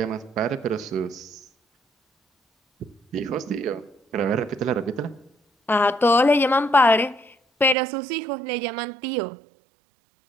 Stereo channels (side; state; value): left; drops out; at 7.8 s